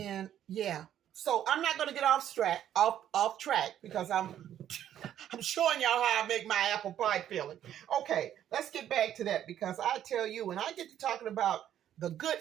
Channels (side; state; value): left; quieter; 10.8 dB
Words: yeah, so I'm not going to get off track because I'm showing y'all how I make my apple pie filling. Okay, let's get back to that, because I tell you, when I get to talking about the